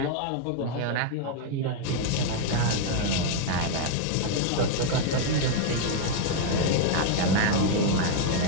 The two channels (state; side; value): different; both; correlation 0.00